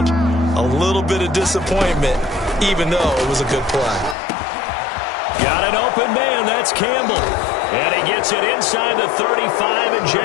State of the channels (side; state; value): right; drops out; at 4.2 s